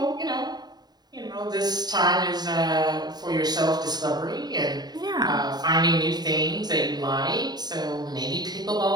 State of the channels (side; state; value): left; late; 0.20 ms